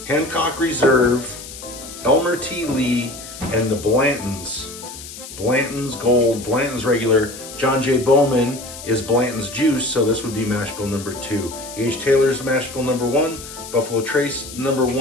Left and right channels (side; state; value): left; noise; hiss, 13 dB below the sound